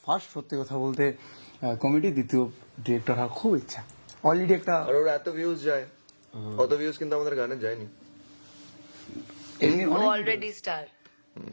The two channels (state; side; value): inverted; both; correlation -1.00